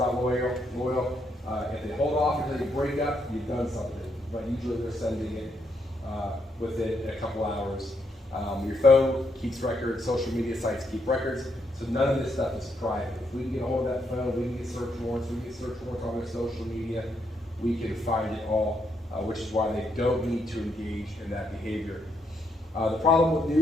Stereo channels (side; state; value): both; normal; correlation 0.77